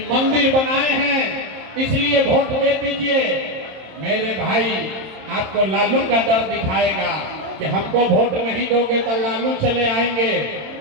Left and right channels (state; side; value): late; left; 27 ms